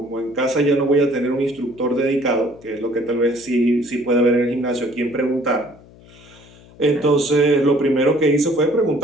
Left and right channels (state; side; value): noise; left; hum, 24 dB below the sound